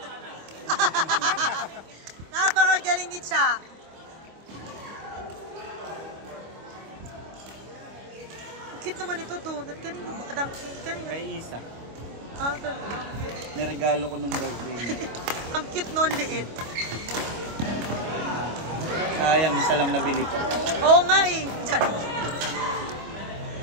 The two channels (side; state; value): left; late; 25 ms